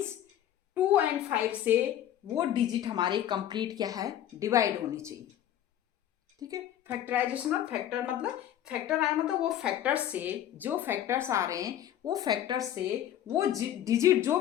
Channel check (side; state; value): right; quieter; 11.4 dB